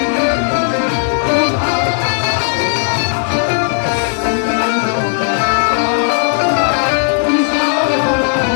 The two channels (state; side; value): silent; right; digital silence